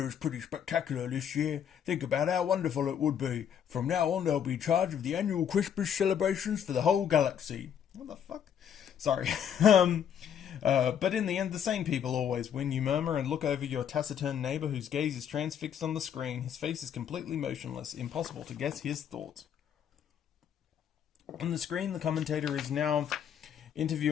is pretty spectacular this year. Think about how wonderful it would be. From now on, they'll be in charge of the annual Christmas celebrations for the whole galaxy. What the fuck? Sorry. But in the end, the same people always win. You murmur and look over your taciturn neighbour whose gaze is transfixed on the screen. His face is completely motionless. Impossible to guess his thoughts. On the screen, the commentator is now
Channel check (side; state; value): right; quieter; 8.7 dB